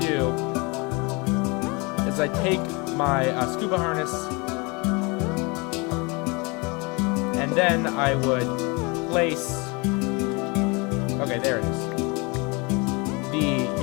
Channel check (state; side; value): quieter; right; 28.5 dB